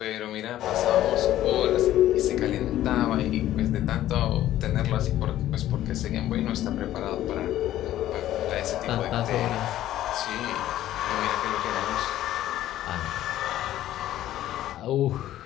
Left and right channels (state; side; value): quieter; right; 13.3 dB